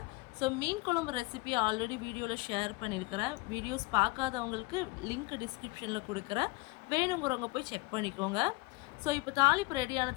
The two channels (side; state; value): right; quieter; 24.5 dB